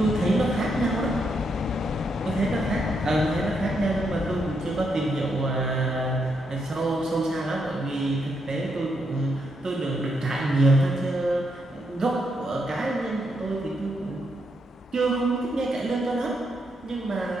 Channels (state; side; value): normal; both; correlation 0.79